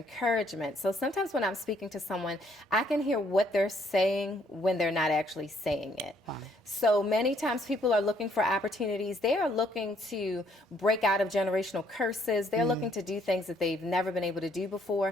So sometimes when I'm speaking to someone, I can hear what they're saying when they're not actually saying it. Wow. So many times people are looking for opportunities. They are looking to break out of generational curses. They're looking to do things that they've never been able to do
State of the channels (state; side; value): normal; both; correlation 0.67